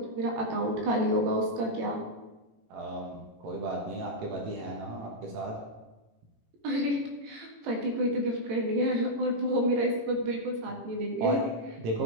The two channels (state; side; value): late; left; 18 ms